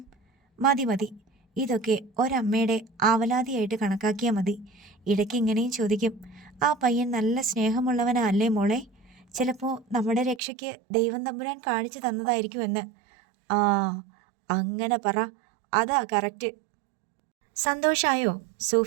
മതി മതി, ഇതൊക്കെ ഒരമ്മയുടെ ആവലാതിയായിട്ട് കണക്കാക്കിയാൽ മതി. ഇടയ്ക്ക് ഇങ്ങനെയും ചോദിക്കും, ആ പയ്യൻ നല്ല സ്നേഹമുള്ളവനാ അല്ലേ മോളെ? ചിലപ്പോൾ നമ്മുടെ രക്ഷയ്ക്ക് ദൈവം തമ്പുരാൻ കാണിച്ചു തന്നതായിരിക്കുമെന്ന്. ആ, അങ്ങനെ പറ, അതാ കറക്റ്റ്. സന്തോഷായോ?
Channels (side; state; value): left; drops out; at 10.4 s